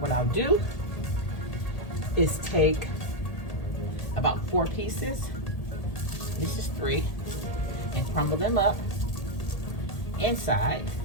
I'll do is take about 4 pieces, this is 3, and crumble them up inside,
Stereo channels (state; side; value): late; right; 1.8 ms